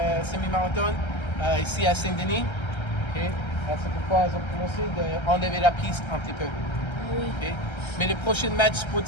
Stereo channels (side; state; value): right; late; 1.3 ms